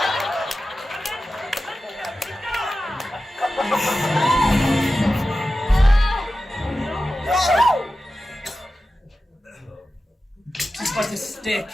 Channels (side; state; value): both; normal; correlation 0.93